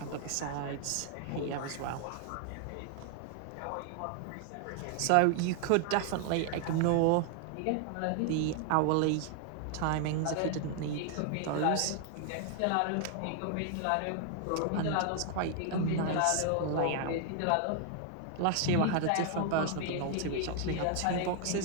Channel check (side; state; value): both; different; correlation 0.00